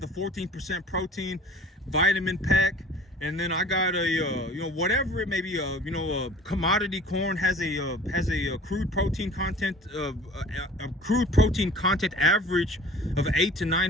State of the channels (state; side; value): normal; both; correlation 0.46